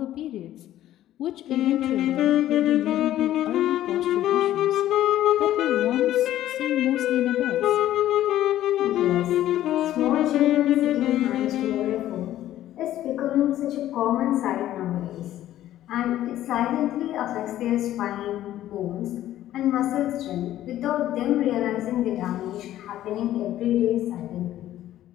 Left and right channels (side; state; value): right; quieter; 13.1 dB